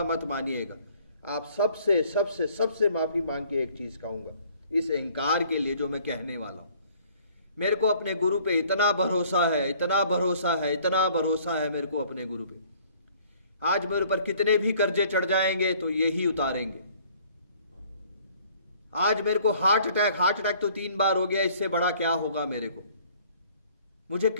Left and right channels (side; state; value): both; inverted; correlation -0.57